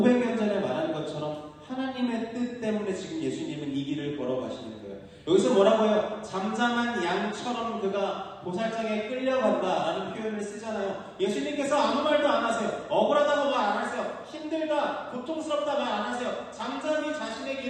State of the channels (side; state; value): both; identical; correlation 1.00